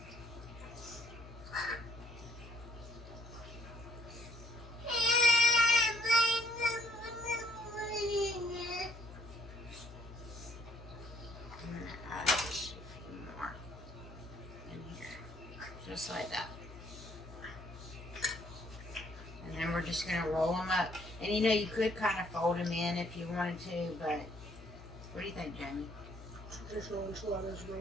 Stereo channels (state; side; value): normal; both; correlation 0.64